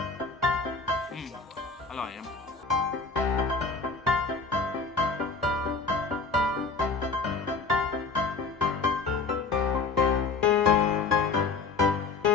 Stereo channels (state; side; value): quieter; right; 4.4 dB